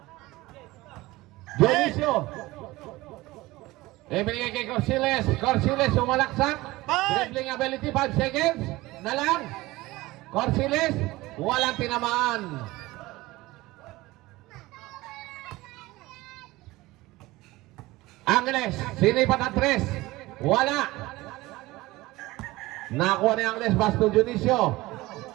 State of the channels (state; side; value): quieter; left; 19.5 dB